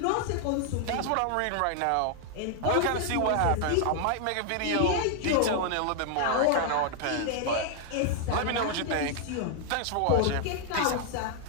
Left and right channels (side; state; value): both; different; correlation 0.00